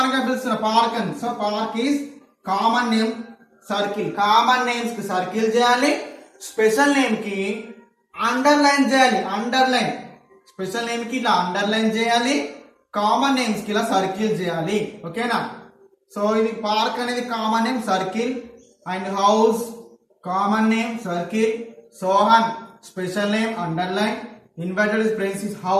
గా పిలుస్తున్న పార్క్ అని. So park is common name. Circle. Common names కి సర్కిల్ చేయాలి. Special name కి అండర్లైన్ చేయాలి. అండర్లైన్. స్పెషల్ నేమ్ కి ఇలా అండర్లైన్ చేయాలి. కామన్ నేమ్స్ కి ఇలా సర్కిల్ చేయాలి. ఓకేనా? సో ఇది పార్క్ అనేది common name circle. And house common name circle. Sohan special name underline. Invited friends is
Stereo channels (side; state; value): both; identical; correlation 1.00